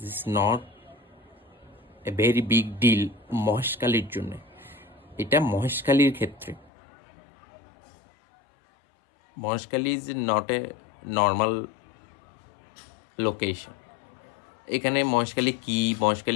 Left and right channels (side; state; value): right; drops out; at 6.7 s